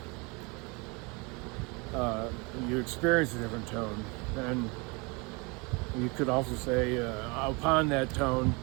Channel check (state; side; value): quieter; left; 29.2 dB